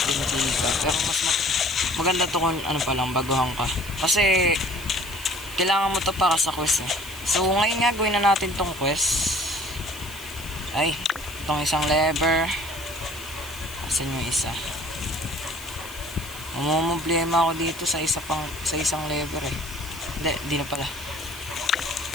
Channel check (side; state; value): left; noise; hiss, 15 dB below the sound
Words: ka. Pero mas maganda to kung ano pa lang, baguhan ka. Kasi, kailangan mo to para sa quest eh. So ngayon nga gawin na natin tong quest. Ay, itong isang lever. Asan yung isa? Mamumblema ako dito sa isang lever eh. Di na pala.